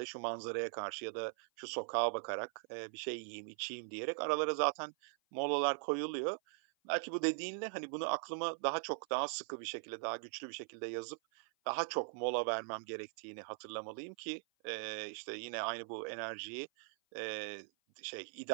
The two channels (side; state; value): left; silent; 51 dB below the other